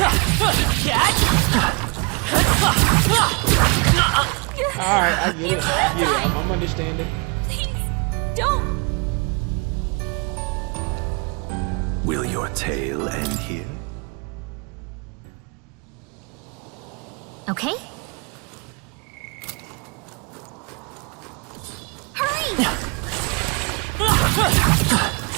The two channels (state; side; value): quieter; left; 32.2 dB